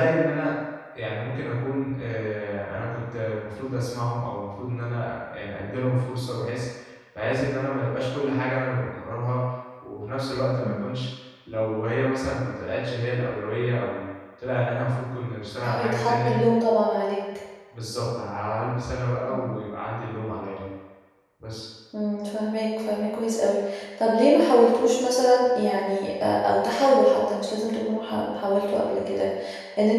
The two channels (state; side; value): identical; both; correlation 1.00